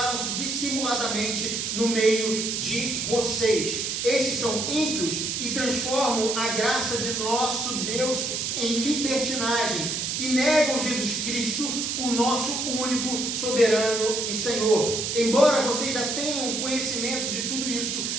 dissimuladamente no meio de vocês. Esses são ímpios e transformam a graça de nosso Deus em libertinagem e negam Jesus Cristo, o nosso único soberano e Senhor. Embora vocês já tenham conhecimento de tudo isso,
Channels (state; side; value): noise; right; hiss, 1 dB below the sound